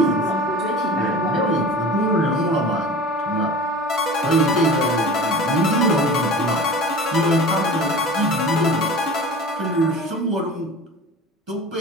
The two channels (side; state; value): both; normal; correlation 0.37